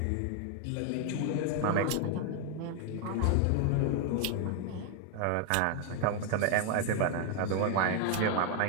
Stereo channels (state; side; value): different; both; correlation 0.00